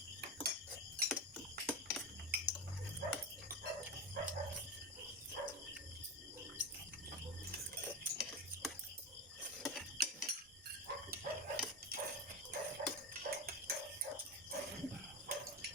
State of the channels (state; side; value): normal; both; correlation 0.18